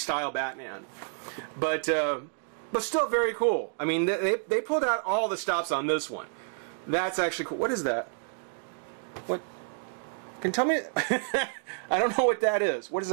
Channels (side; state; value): left; silent; digital silence